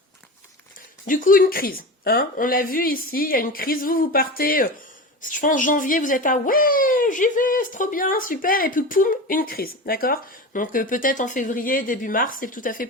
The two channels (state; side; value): normal; both; correlation 0.27